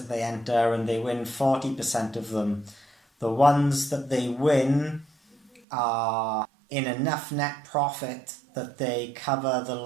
they enter and they win 40% of them, the ones that they win are in enough net profit that they cover the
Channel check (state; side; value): drops out; left; at 5.6 s